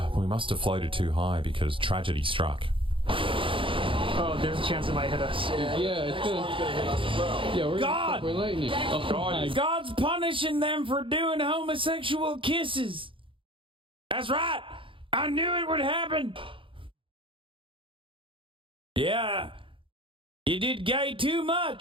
We must have floated too high because tragedy struck. Oh, there's a chance it might hit us. Yeah, it's gonna hit us as well. Yeah, we're lightning. Oh, God's punishing them for doing homosexual kisses. That's right. I knew it would happen. Yeah. You did gay too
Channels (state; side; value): late; left; 0.25 ms